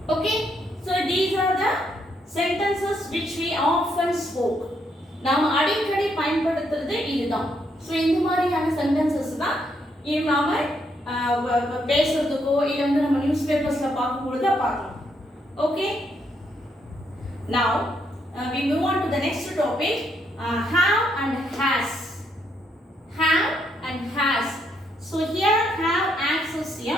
Okay, so these are the sentences which we often spoke. நாம அடிக்கடி பயன்படுத்துறது இதுதான். சோ இந்த மாதிரியான sentences தான் நாம பேசுறதுக்கோ இல்ல வந்து நம்ம நியூஸ் பேப்பர்ஸ்ல பார்க்கும்போது பார்க்கலாம். Okay, now we move on to the next topic, have and has. Have and has. So here have acts as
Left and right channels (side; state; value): both; normal; correlation 0.75